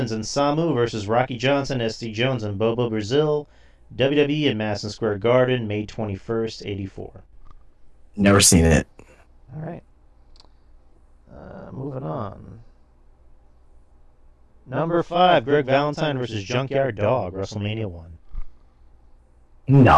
and Samu versus Rocky Johnson, SD Jones, and Bobo Brazil, WWE in Madison Square Garden, May 21st, '84. Never seen it. All right. Moving on. Number 5, Greg Valentine versus Junkyard Dog, WrestleMania 1.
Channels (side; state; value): both; identical; correlation 1.00